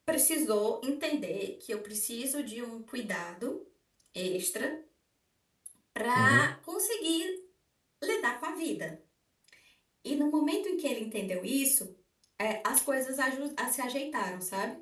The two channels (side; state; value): both; identical; correlation 1.00